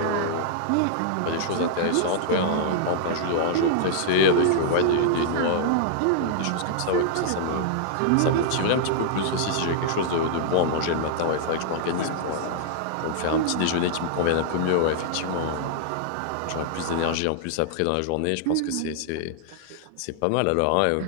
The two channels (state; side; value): different; both; correlation -0.01